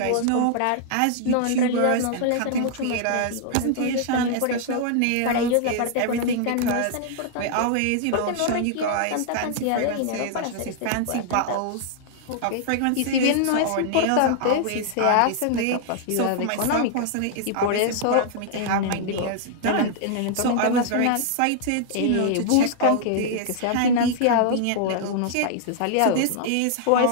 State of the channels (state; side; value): different; both; correlation -0.01